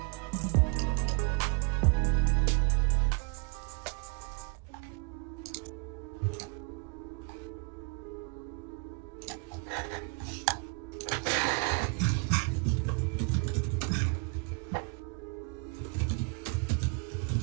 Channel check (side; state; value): left; quieter; 33.4 dB